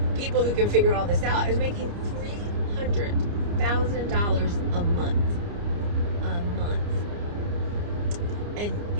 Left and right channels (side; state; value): left; late; 29 ms